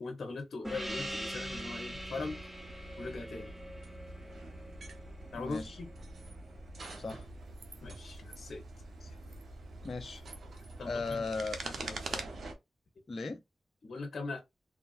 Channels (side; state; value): both; normal; correlation 0.89